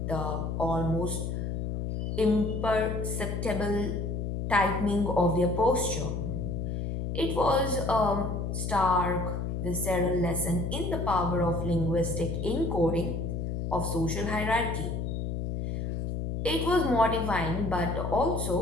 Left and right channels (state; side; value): noise; left; hum, 2 dB below the sound